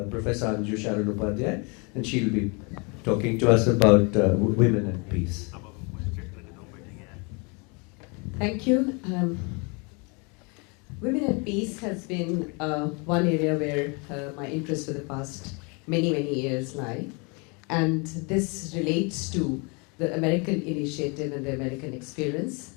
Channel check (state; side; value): quieter; right; 31.9 dB